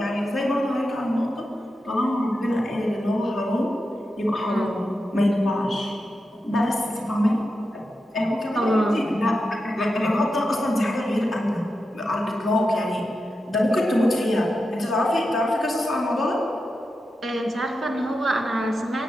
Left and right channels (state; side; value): normal; both; correlation 0.89